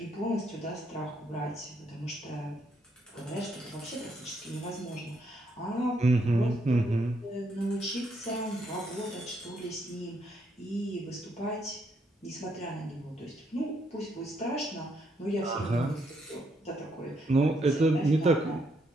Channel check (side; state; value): both; normal; correlation 0.74